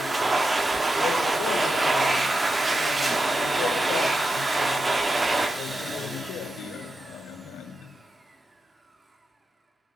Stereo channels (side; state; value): both; normal; correlation 0.89